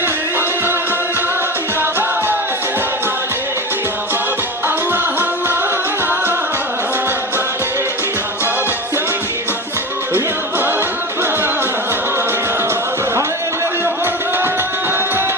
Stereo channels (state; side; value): normal; both; correlation 0.27